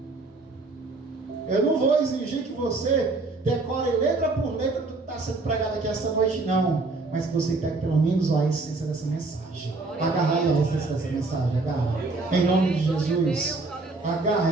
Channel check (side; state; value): left; quieter; 3.5 dB